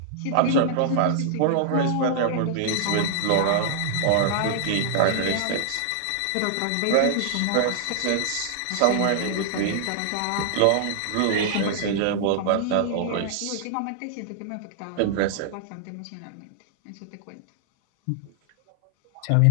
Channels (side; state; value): both; different; correlation -0.01